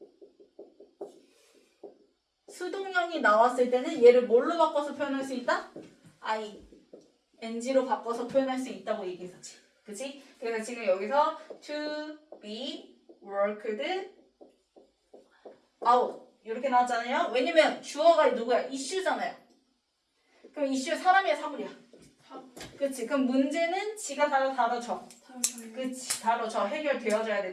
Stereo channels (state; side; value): identical; both; correlation 1.00